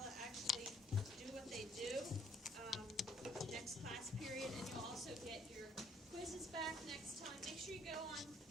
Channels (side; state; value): both; normal; correlation 0.64